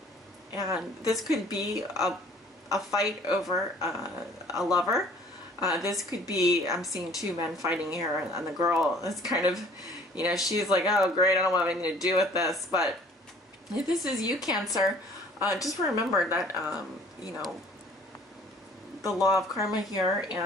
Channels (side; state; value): both; normal; correlation 0.54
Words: this could be a fight over a lover. This could be, I'm seeing two men fighting here, and the girl is kind of, you know, she's like, oh great, I don't want anything to do with this. But if this is you, Cancer, just remember that, you know, the law of karma here,